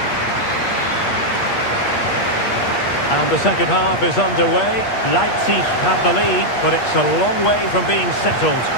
And the second half is underway. Leipzig have the lead, but it's a long way from being settled.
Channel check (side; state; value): right; late; 8.5 ms